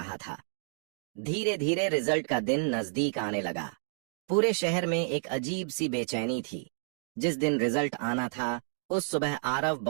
था। धीरे धीरे रिजल्ट का दिन नजदीक आने लगा। पूरे शहर में एक अजीब सी बेचैनी थी। जिस दिन रिजल्ट आना था उस सुबह आरव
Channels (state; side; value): silent; left; digital silence